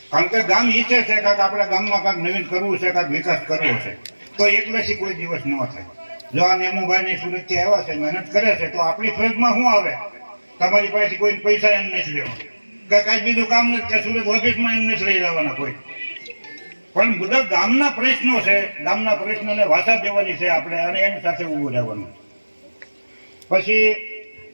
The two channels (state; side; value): inverted; both; correlation -1.00